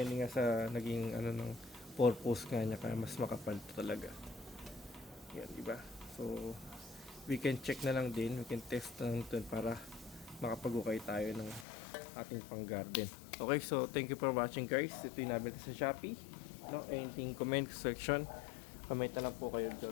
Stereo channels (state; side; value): drops out; right; at 11.7 s